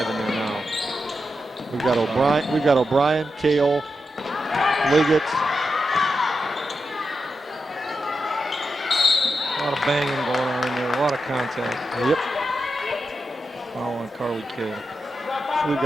in there now. We've got O'Brien, Kale, Liggett. A lot of banging going on in there. A lot of contact. Yep. Foul on Carly Kale. So we've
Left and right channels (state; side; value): normal; both; correlation 0.88